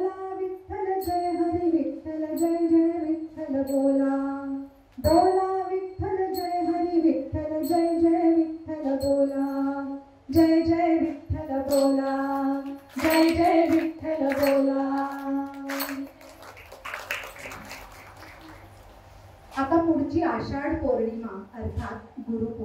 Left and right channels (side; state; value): both; identical; correlation 1.00